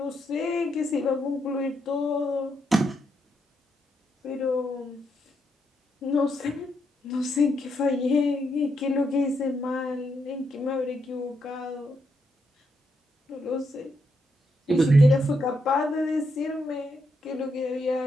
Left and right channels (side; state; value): both; normal; correlation 0.80